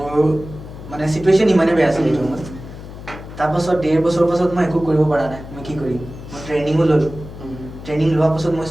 মানে চিটুৱেশ্যন ইমানেই বেয়া আছিলে এইটো সময়ত তাৰপাছত 1.5 বছৰৰ পাছত মই একো কৰিব পৰা নাই মই কি কৰিম মই ট্ৰেইনিঙো ল'লোঁ ট্ৰেইনিং লোৱাৰ পাছত মই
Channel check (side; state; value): left; noise; hum, 13 dB below the sound